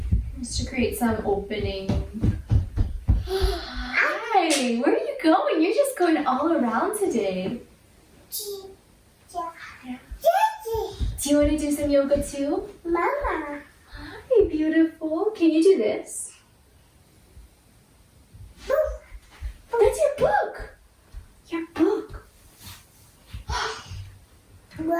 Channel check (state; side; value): identical; both; correlation 1.00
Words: Just to create some opening. Hi, where are you going? You're just going all around today. Yeah. Do you want to do some yoga too? Mama. Hi, beautiful. Can you do this? That's your book. Your book.